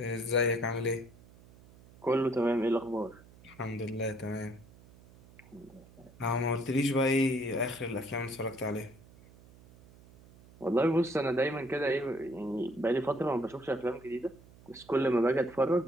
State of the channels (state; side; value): noise; right; hum, 23 dB below the sound